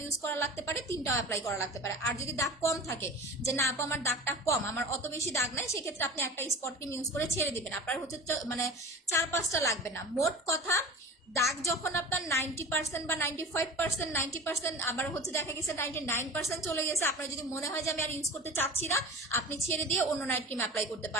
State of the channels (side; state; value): both; normal; correlation 0.36